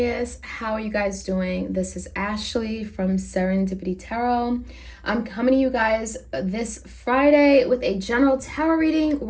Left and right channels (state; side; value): identical; both; correlation 1.00